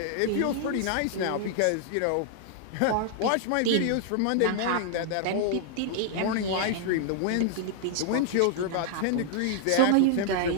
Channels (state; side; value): different; both; correlation -0.01